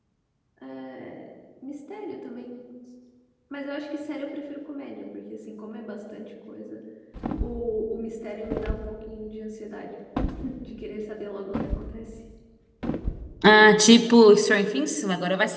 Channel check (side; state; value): both; identical; correlation 1.00